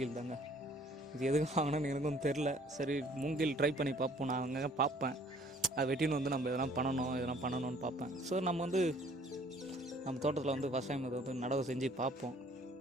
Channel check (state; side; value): normal; both; correlation 0.57